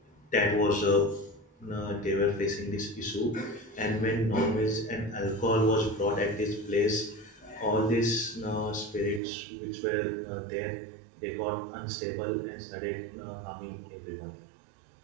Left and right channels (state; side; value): drops out; left; at 9.2 s